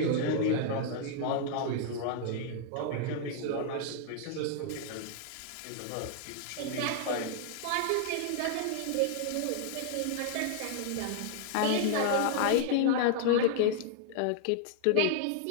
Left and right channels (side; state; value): both; different; correlation 0.00